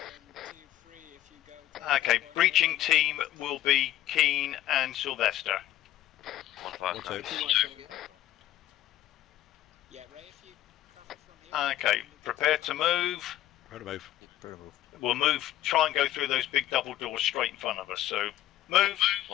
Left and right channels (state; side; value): quieter; right; 13.2 dB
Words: Okay, breaching team will be Keane and Sylvester. 1-5. Yeah, Ray, if you cover from here. Okay, prepare to move. Prepare to move. We'll move, try and go through those big double doors straight in front of us, so move.